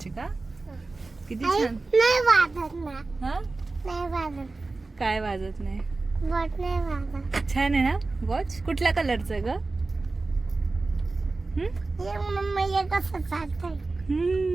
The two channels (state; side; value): quieter; left; 3.5 dB